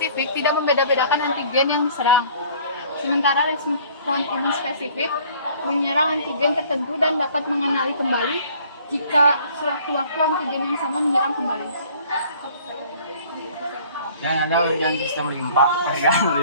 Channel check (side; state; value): both; inverted; correlation -0.54